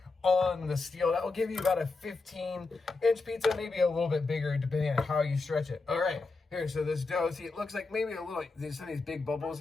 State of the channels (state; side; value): quieter; right; 3.8 dB